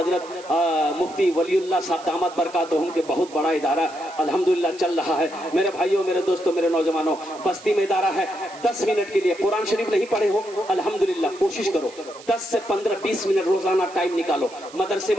मुफ्ती वलीउल्लाह साहब दामद बरकातहुम के बहुत बड़ा इदारा अल्हम्दुलिल्लाह चल रहा है। मेरे भाइयों, मेरे दोस्तों, मेरे नौजवानों, बस्ती में इदारा है। 10 मिनट के लिए कुरान शरीफ नहीं पढ़े हो अल्हम्दुलिल्लाह कोशिश करो 10 से 15-20 मिनट रोजाना टाइम निकालो, मदरसे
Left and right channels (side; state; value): right; noise; hiss, 20 dB below the sound